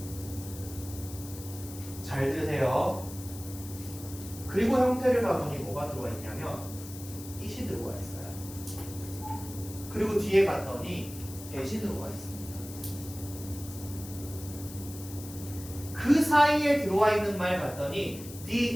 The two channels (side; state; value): left; noise; hiss, 14 dB below the sound